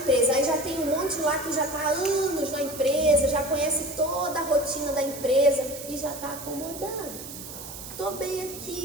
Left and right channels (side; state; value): right; noise; hiss, 11 dB below the sound